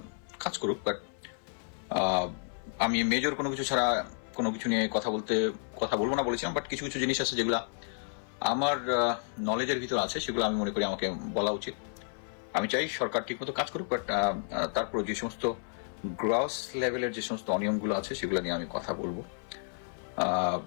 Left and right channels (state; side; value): silent; right; 56 dB below the other